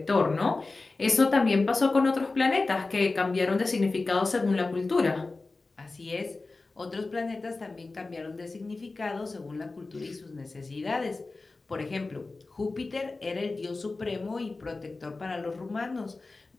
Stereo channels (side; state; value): right; quieter; 3.5 dB